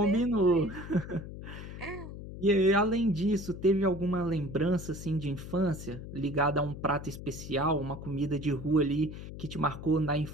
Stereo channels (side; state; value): left; noise; hum, 11 dB below the sound